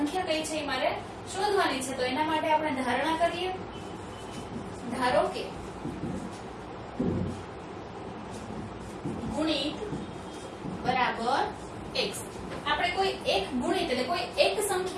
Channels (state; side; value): identical; both; correlation 1.00